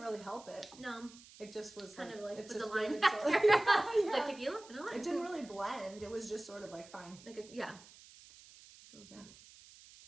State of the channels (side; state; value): right; noise; hiss, 21 dB below the sound